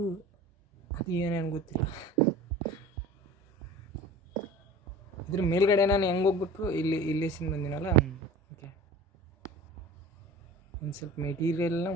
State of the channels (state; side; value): normal; both; correlation 0.40